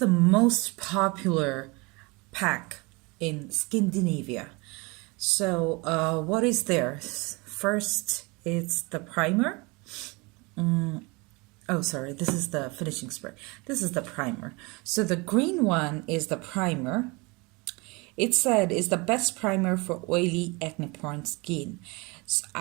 most popular pack in Skindinivia. So what is there? First, it's the primer. Oh, sorry, this is the finishing spray. This is the primer. So the green one is the primer. It said is the best primer for oily acne-prone skin.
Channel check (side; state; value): left; quieter; 26.6 dB